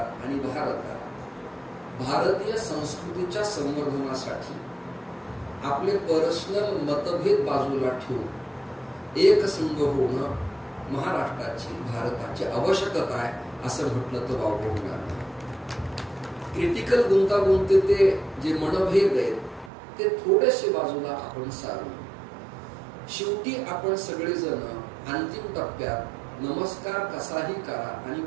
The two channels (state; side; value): drops out; left; at 19.7 s